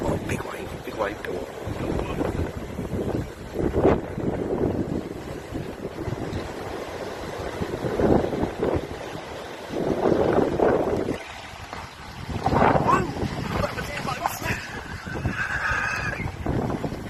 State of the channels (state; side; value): identical; both; correlation 1.00